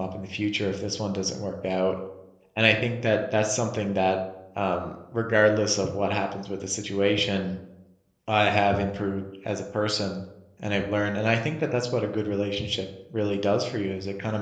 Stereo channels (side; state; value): both; identical; correlation 1.00